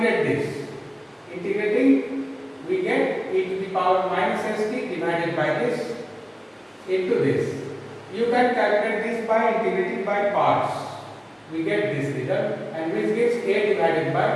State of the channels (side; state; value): both; identical; correlation 1.00